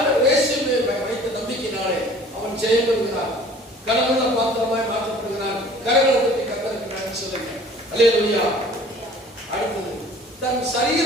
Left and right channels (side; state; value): both; normal; correlation 0.49